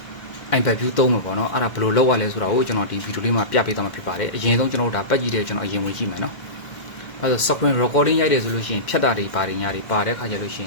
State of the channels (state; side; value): late; right; 2.1 ms